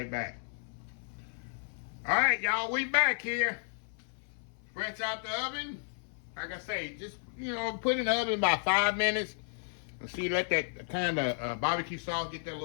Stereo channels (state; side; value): silent; right; 56 dB below the other